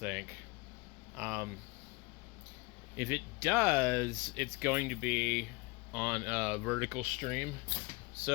Um, if it does, it's going to be on a vertical stream.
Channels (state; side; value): quieter; right; 25.6 dB